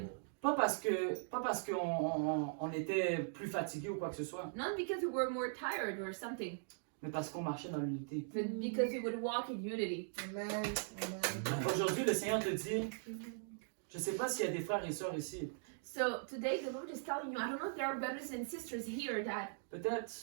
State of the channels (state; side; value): silent; left; digital silence